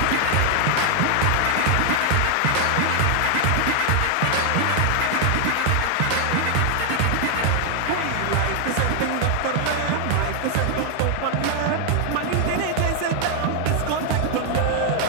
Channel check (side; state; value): both; different; correlation 0.00